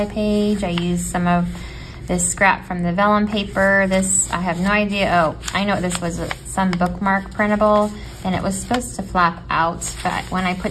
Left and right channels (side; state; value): both; identical; correlation 1.00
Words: page. I used some of this scrap from the vellum paper. This, I have no idea. Oh, I know this was some bookmark printable, and it was supposed to flap out, but when I